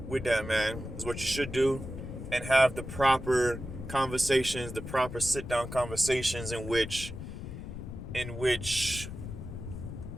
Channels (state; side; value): noise; left; rumble, 9 dB below the sound